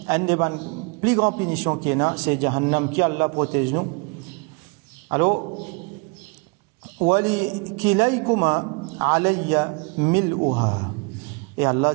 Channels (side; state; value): left; quieter; 31.7 dB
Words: un des plus grandes punitions qu'il y a, c'est Jahannam qui Allah protège nous. Alors, Wali kilaykuma alayya mil'uha. Et Allah